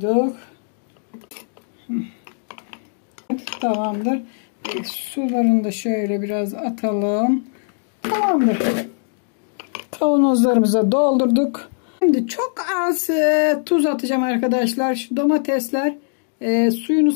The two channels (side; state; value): right; silent; digital silence